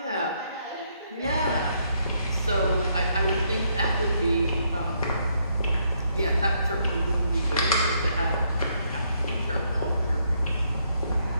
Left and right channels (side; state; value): both; inverted; correlation -0.73